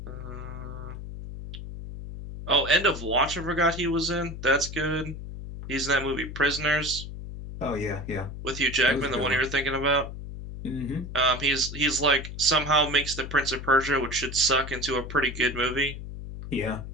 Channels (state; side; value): noise; left; hum, 9 dB below the sound